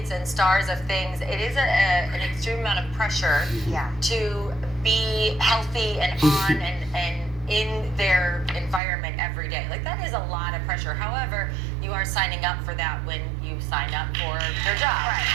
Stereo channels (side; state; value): left; drops out; at 8.8 s